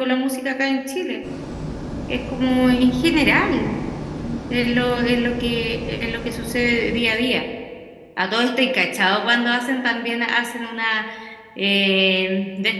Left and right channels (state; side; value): identical; both; correlation 1.00